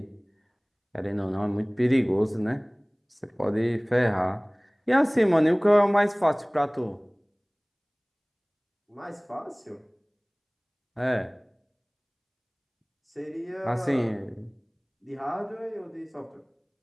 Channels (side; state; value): both; identical; correlation 1.00